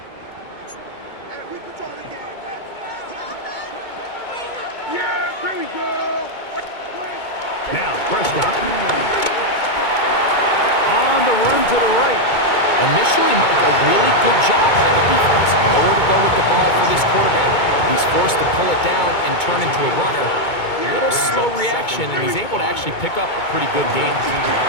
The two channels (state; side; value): late; right; 2.2 ms